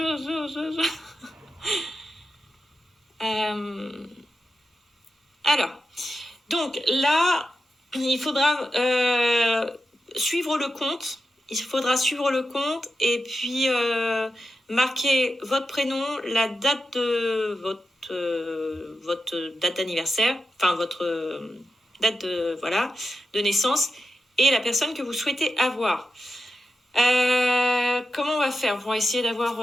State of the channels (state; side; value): normal; both; correlation 0.89